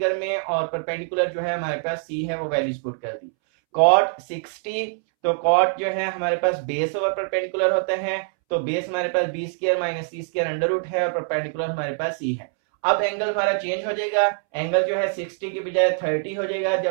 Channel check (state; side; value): silent; left; 63 dB below the other